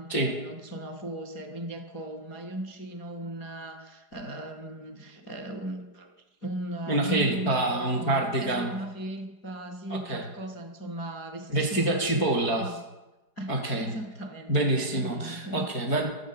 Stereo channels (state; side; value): late; right; 4.8 ms